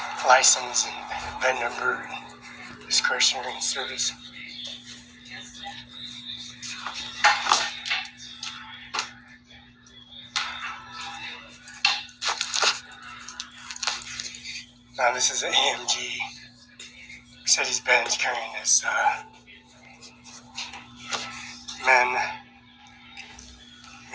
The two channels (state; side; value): identical; both; correlation 1.00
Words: license and VIN number and discretionary service. Now this is an AMG Mercedes-Benz carrying this VIN